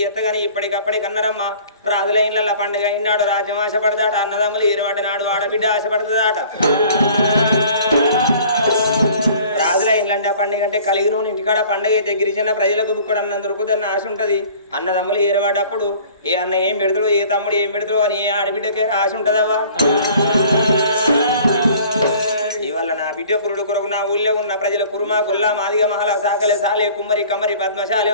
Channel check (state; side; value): inverted; both; correlation -0.49